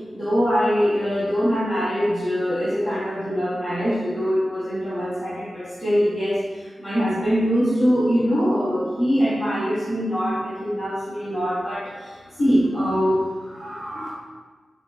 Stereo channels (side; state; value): both; normal; correlation 0.94